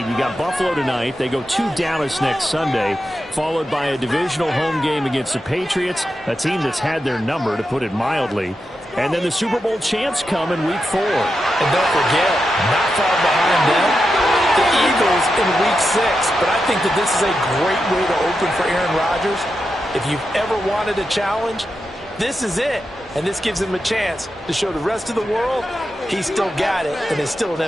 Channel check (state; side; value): normal; both; correlation 0.88